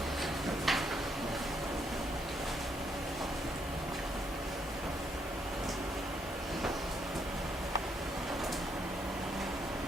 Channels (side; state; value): both; normal; correlation 0.74